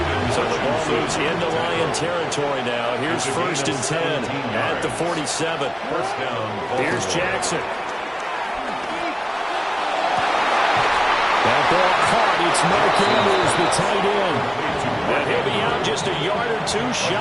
So the ball moves into Lion territory now. Here's 1st and 10 at the 47. First down. Here's Jackson. That ball caught. It's Mark Andrews, the tight end. And he'll be out just a yard or two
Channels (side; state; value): both; identical; correlation 1.00